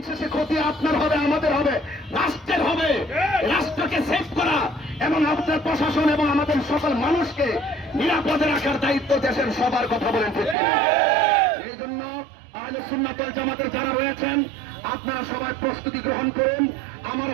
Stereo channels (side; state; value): left; drops out; at 10.6 s